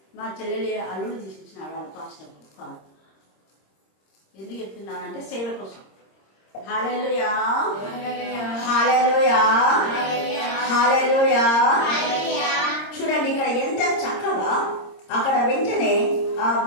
మా చెల్లెలి అల్లుడు తీసిచ్చినాడు వాళ్ళ పాస్టర్ కారు. ఎందుకు చెప్తున్నానంటే సేవ కోసం. హల్లెలూయా హల్లెలూయా హల్లెలూయా. చూడండి ఇక్కడ ఎంత చక్కగా అక్కడ వెంటనే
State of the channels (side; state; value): right; late; 26 ms